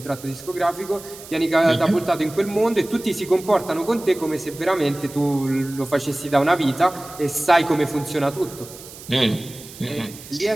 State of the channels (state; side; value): noise; right; hiss, 17 dB below the sound